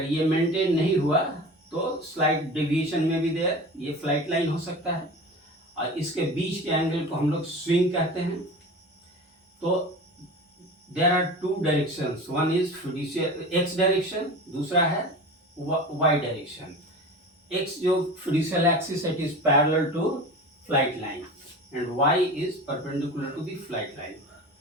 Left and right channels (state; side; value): normal; both; correlation 0.34